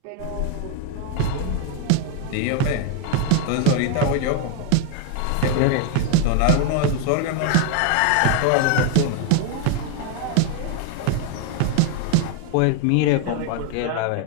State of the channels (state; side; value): different; both; correlation 0.01